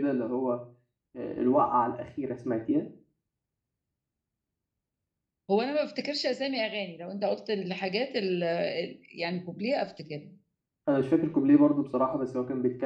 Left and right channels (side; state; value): both; identical; correlation 1.00